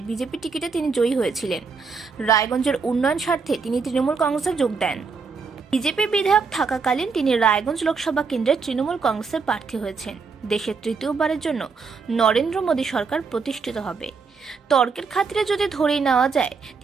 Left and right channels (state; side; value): quieter; left; 5.0 dB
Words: বিজেপি টিকিটে তিনি জয়ী হয়েছিলেন। রায়গঞ্জের উন্নয়ন স্বার্থে তিনি তৃণমূল কংগ্রেসে যোগ দেন। বিজেপি বিধায়ক থাকাকালীন তিনি রায়গঞ্জ লোকসভা কেন্দ্রের তৃণমূল কংগ্রেসের প্রার্থী হয়েছেন। দেশের তৃতীয়বারের জন্য নরেন্দ্র মোদী সরকার প্রতিষ্ঠিত হবে। তর্কের খাতিরে যদি ধরেই নেওয়া যায়